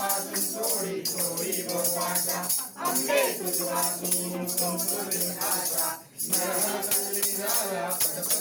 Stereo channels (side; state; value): both; identical; correlation 1.00